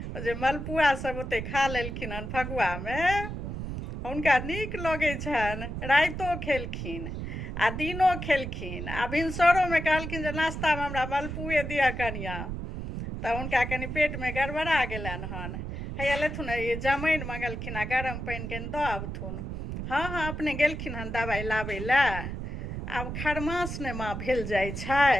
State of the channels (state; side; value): noise; right; rumble, 6 dB below the sound